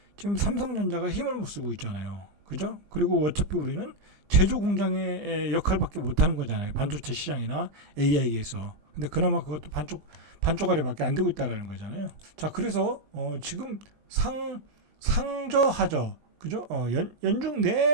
지금 삼성전자가 힘을 못 쓰고 있잖아요. 그죠? 그리고 어차피 우리는 제조 공장의 역할밖에 못하는 거잖아요. 반도체 시장이나 AI에서. 근데 그나마 그것도 반쪽아리밖에 안 되고 있다라는 거잖아요. 자, 그래서 지금 상저하저, 그죠? 연중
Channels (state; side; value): late; left; 20 ms